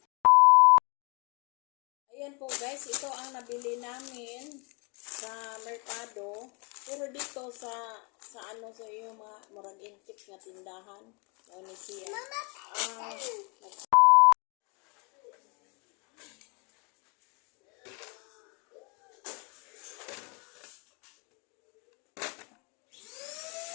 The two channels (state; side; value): quieter; right; 32.1 dB